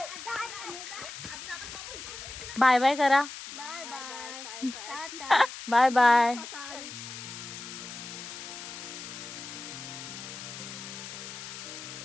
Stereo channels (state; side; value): noise; left; hiss, 10 dB below the sound